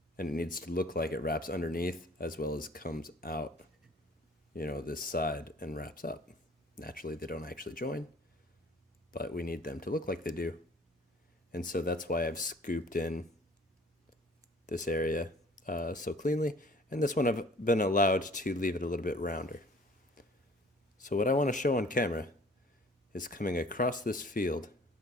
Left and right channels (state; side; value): normal; both; correlation 0.52